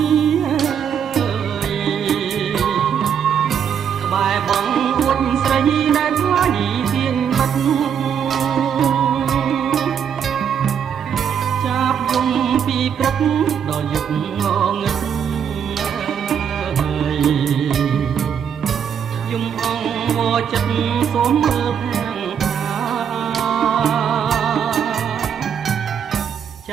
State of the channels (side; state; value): left; quieter; 8.0 dB